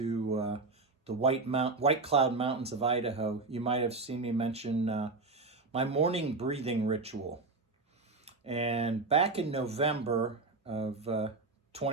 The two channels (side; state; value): left; quieter; 3.7 dB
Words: the White Cloud Mountains of Idaho, you might have seen me mention my morning breathing ritual. And back in November of